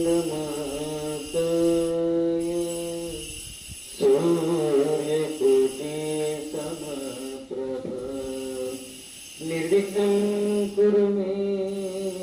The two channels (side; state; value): both; identical; correlation 1.00